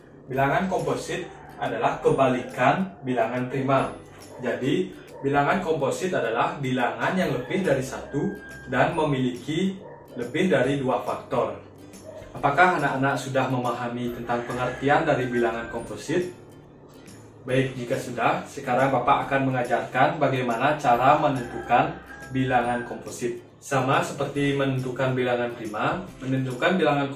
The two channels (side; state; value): both; identical; correlation 1.00